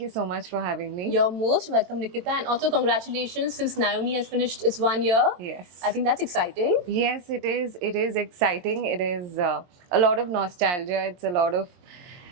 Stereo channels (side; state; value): left; late; 22 ms